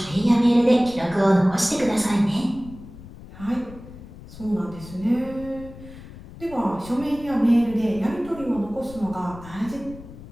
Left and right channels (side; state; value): left; noise; rumble, 16 dB below the sound